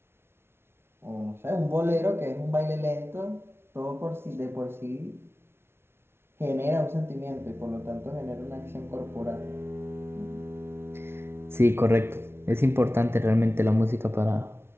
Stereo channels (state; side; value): late; left; 0.12 ms